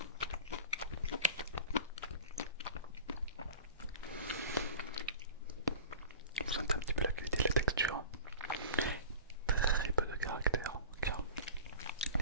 Vous sentez un petit peu la qualité de la texture.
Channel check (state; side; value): inverted; both; correlation -0.38